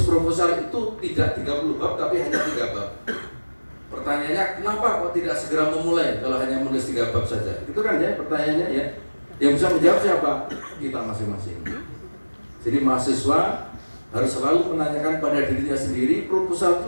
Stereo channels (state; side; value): inverted; both; correlation -1.00